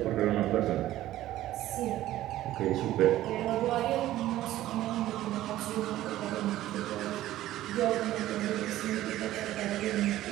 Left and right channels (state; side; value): quieter; left; 14.5 dB